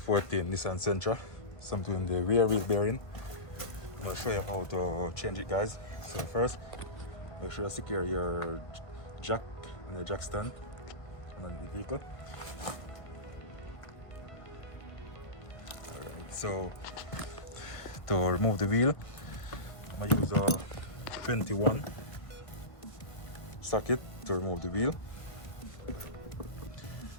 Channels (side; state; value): right; late; 1.5 ms